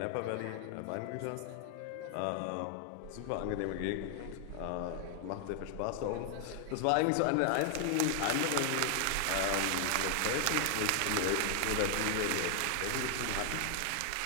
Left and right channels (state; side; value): different; both; correlation 0.00